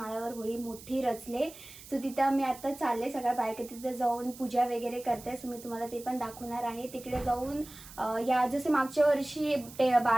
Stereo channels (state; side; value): noise; right; hiss, 17 dB below the sound